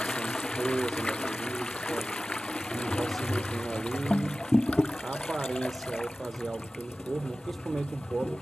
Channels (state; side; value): normal; both; correlation 0.96